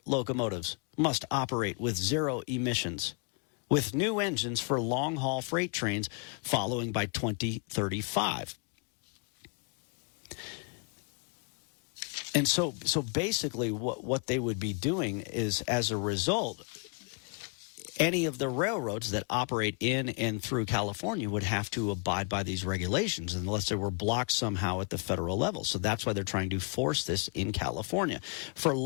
locomotives must operate with zero emissions, with new engines for long-haul freight trains following by 2035. And so basically what they would be doing is, as a result, any of the railroads that operate in and through California would have to abide by these regulations unless they were blocked somehow at the federal level. So that's why they're trying to force this in California. For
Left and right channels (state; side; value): quieter; right; 34.1 dB